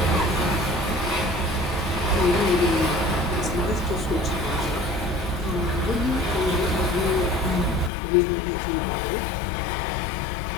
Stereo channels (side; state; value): right; drops out; at 7.9 s